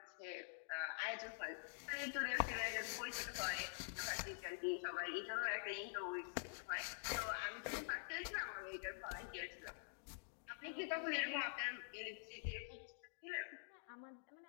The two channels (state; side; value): silent; right; digital silence